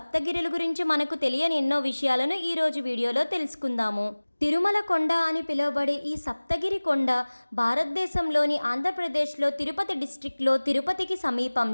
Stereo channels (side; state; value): both; inverted; correlation -1.00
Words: గురించి మనకు తెలియని ఎన్నో విషయాలను ఈరోజు వీడియోలో తెలుసుకుందాము. తిరుమల కొండ అని పిలువబడే ఈ సప్తగిరి కొండ భారతదేశంలోని ఆంధ్రప్రదేశ్లో తిరుపతి డిస్ట్రిక్ట్లో తిరుపతికి